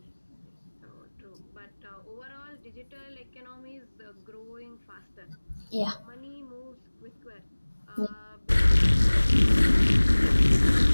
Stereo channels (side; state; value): both; inverted; correlation -1.00